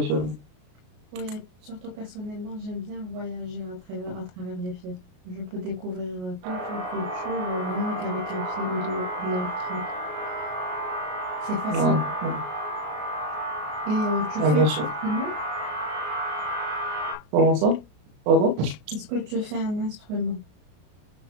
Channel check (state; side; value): late; left; 33 ms